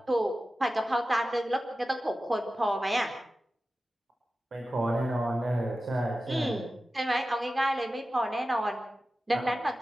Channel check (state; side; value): normal; both; correlation 0.94